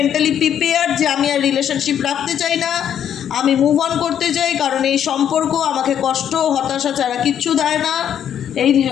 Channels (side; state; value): right; quieter; 9.4 dB